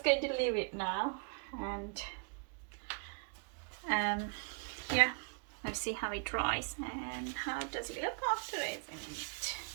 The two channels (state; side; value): quieter; left; 39.6 dB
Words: going to leave it now, and yeah, let's see how it dries and how does it look after using it.